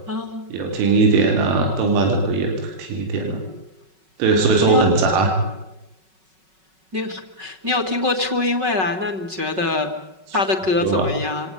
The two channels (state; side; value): late; left; 5.3 ms